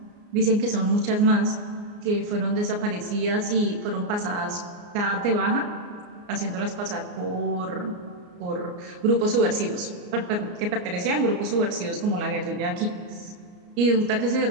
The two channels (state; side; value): late; left; 34 ms